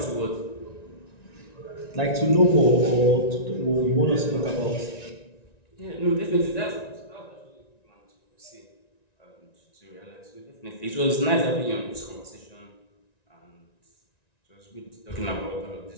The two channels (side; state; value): right; late; 1.9 ms